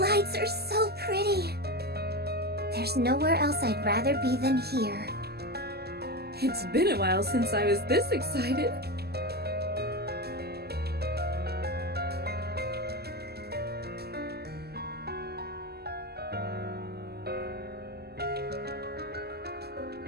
are so pretty. There's nowhere else I'd rather be than here. It's been a while since I was this excited.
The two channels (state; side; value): late; left; 0.46 ms